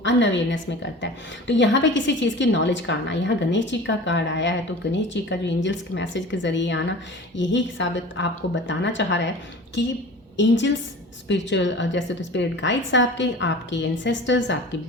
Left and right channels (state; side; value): normal; both; correlation 0.39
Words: अनअवेयरनेस में करता है। तो यहाँ पे किसी चीज़ की नॉलेज का आना, यहाँ गणेश जी का कार्ड आया है, तो गणेश जी का जो एंजल्स के मैसेज के ज़रिए आना, यही साबित आपको बताना चाह रहा है कि एंजल्स, स्पिरिचुअल, जैसे तो स्पिरिट गाइड्स आपके एंसेस्टर्स, आपकी